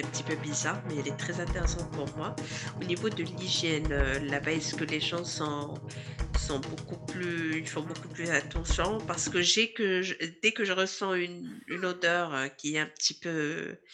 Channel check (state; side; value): identical; both; correlation 1.00